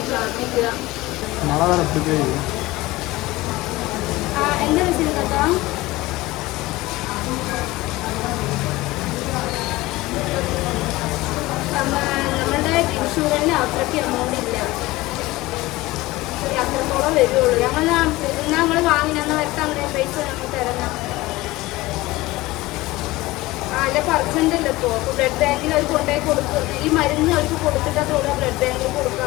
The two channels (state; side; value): quieter; right; 19.4 dB